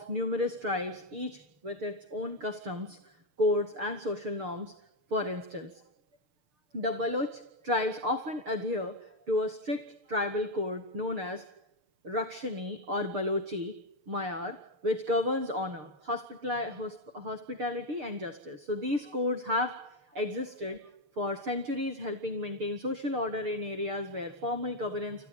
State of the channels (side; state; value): left; late; 6.7 ms